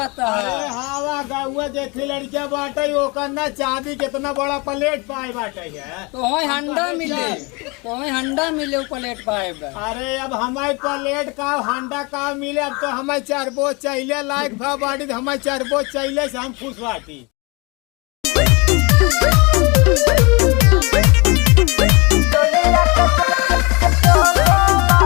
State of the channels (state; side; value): quieter; right; 27.9 dB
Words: अरे है। हाँ वा गौआ देखी लड़किया बाटे ओकर ना चांदी कितना बड़ा प्लेट पाए बाटे है तो वही हंडा मिले वो प्लेट पाए बा। अरे अब हमारे प्लेट का हंडा का मिले अब तो हमें चरबो चाहिए लायक भा बाटी तो हमें चरबो चाहिए से हम खुश बाटी।